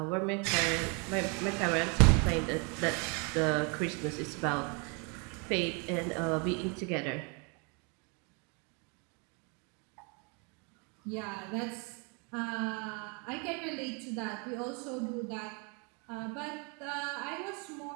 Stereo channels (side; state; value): left; quieter; 33.9 dB